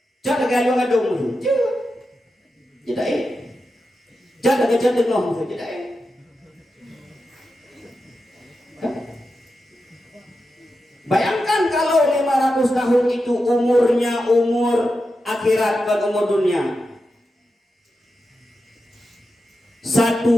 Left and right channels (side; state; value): both; normal; correlation 0.90